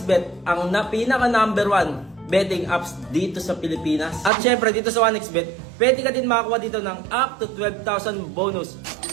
ang pinaka number 1 betting apps dito sa Pilipinas. At syempre, dito sa 1xbet, pwede ka din makakuha dito ng up to 12,000 bonus.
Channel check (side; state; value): left; drops out; at 4.3 s